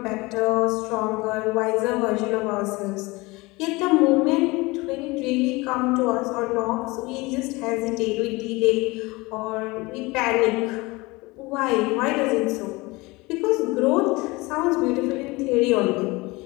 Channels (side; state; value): right; quieter; 23.2 dB